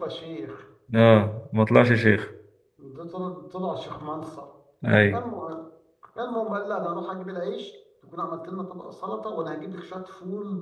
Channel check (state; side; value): identical; both; correlation 1.00